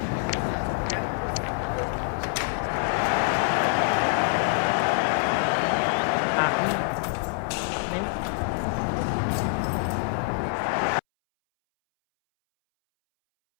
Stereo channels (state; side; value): silent; right; 61 dB below the other